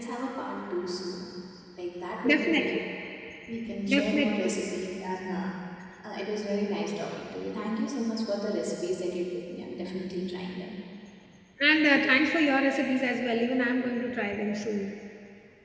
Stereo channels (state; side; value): identical; both; correlation 1.00